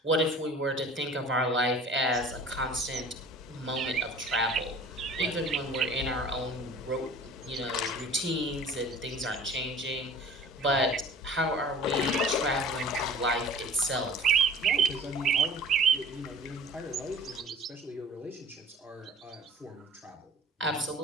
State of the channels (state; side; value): normal; both; correlation 0.45